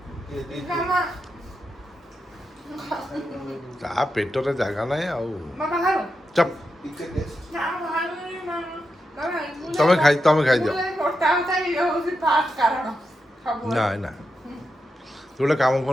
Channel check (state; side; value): normal; both; correlation 0.87